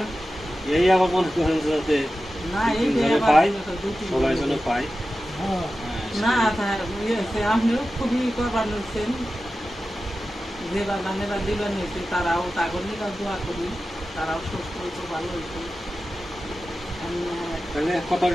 এই আবার মনে করেন যাতে পাই, সবাই যেন পাই। না আপনিও খুবই করবার নিচ্ছেন, যে বাগানেরা দিবার নিয়েছে তারাও তাগর নিকা দোয়া করি, তারাও সুস্থ হয়েছে, ভালো হয়েছে। তাহলে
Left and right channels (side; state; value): both; normal; correlation 0.93